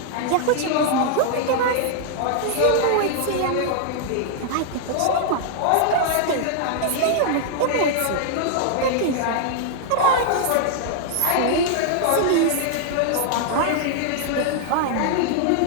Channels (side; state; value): both; different; correlation -0.01